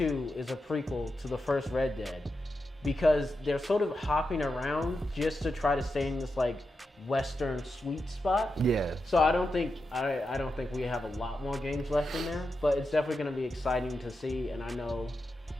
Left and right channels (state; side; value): normal; both; correlation 0.88